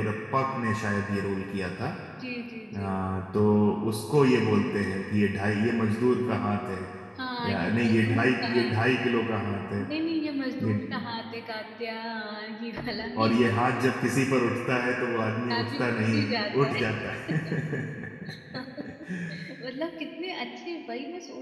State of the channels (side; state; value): both; identical; correlation 1.00